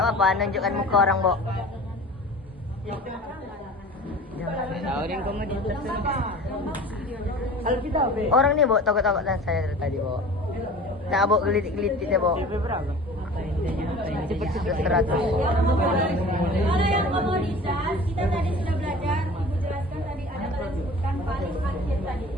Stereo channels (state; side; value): normal; both; correlation 0.41